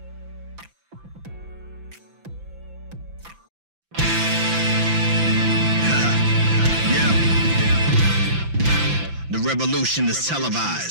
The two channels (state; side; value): late; left; 5.9 ms